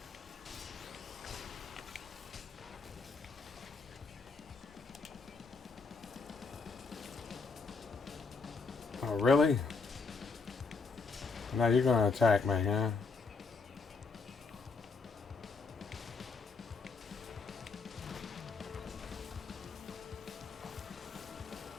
Oh, really? Now you're gonna attack me, huh?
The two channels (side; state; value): right; quieter; 4.5 dB